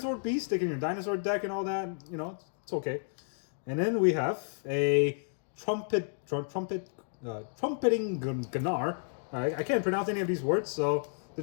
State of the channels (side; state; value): right; silent; digital silence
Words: beast. Stick in your dinosaur deck and all that. It's okay. And then we have a trumpeting Gunnar. I can't pronounce any of these words, so